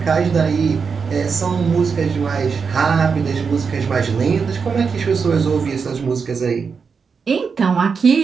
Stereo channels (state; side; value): quieter; left; 5.6 dB